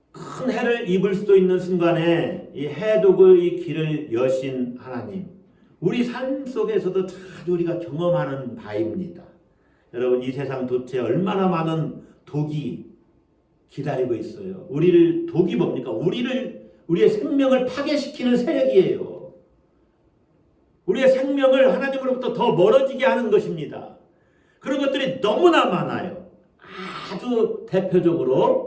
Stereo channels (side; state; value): both; identical; correlation 1.00